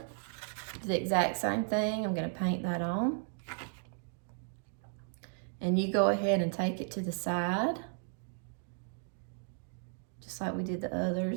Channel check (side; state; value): left; silent; 55 dB below the other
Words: Do the exact same thing. I'm gonna paint that on. And you go ahead and take it to the side, just like we did the